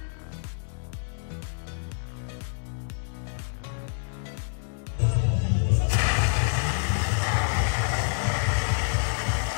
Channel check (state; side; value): silent; right; digital silence